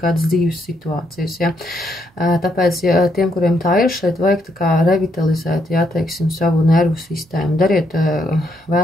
dzīves situācijas, ja? Tāpēc, ja tiem, kuriem tā ir, šeit vajag tā kā revitalizēt, ja, teiksim, savu nervu sistēmu. Dariet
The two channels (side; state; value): both; normal; correlation 0.75